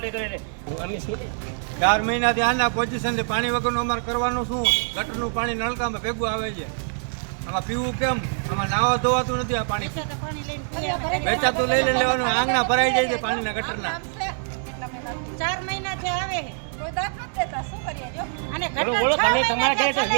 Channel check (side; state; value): left; silent; digital silence